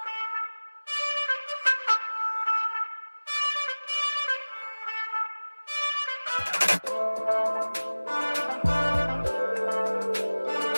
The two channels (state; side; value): inverted; both; correlation -1.00